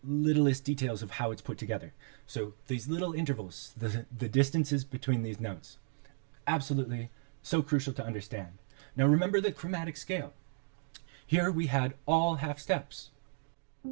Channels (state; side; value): silent; left; digital silence